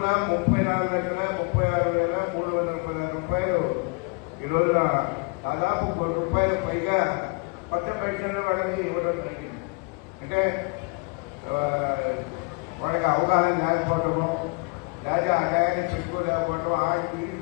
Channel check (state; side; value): quieter; right; 30.9 dB